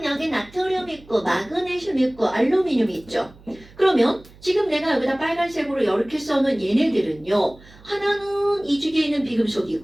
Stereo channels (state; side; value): noise; right; hum, 24 dB below the sound